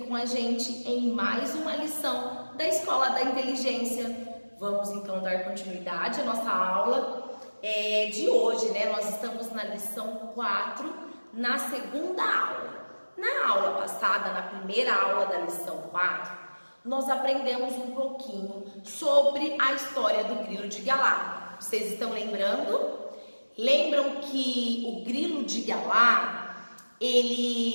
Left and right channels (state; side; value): inverted; both; correlation -1.00